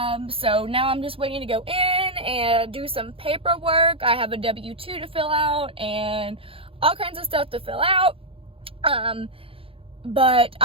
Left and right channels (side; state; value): left; late; 0.27 ms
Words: So now I'm just waiting to go in and do some paperwork. I have a W-2 to fill out and all kinds of stuff to fill out. But